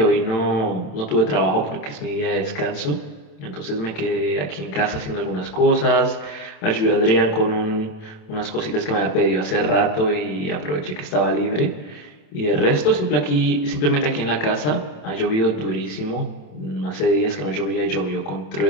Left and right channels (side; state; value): right; late; 27 ms